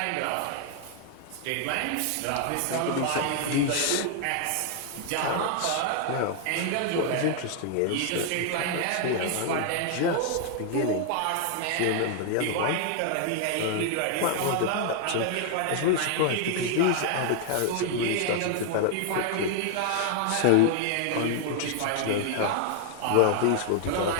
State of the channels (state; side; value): different; both; correlation 0.00